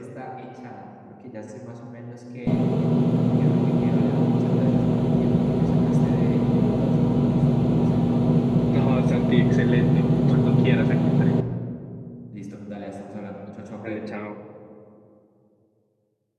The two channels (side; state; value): both; identical; correlation 1.00